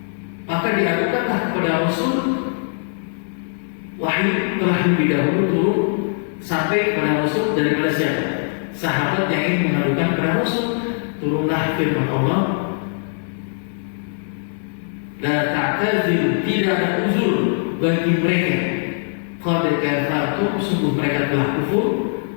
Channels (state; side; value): silent; right; 65 dB below the other